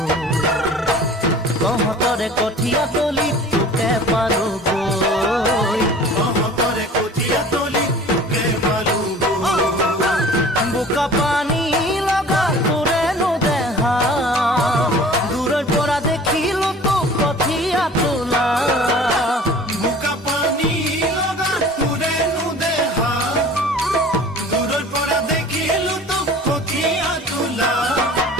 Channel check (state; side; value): normal; both; correlation 0.44